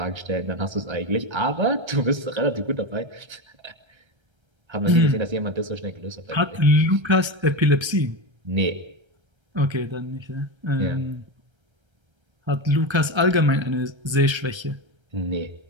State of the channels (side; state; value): left; late; 1.3 ms